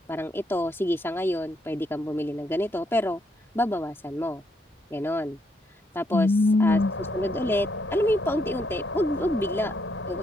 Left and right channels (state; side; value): normal; both; correlation 0.75